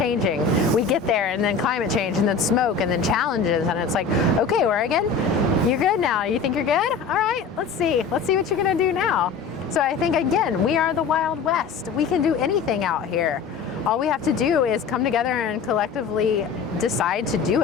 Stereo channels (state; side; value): quieter; right; 5.5 dB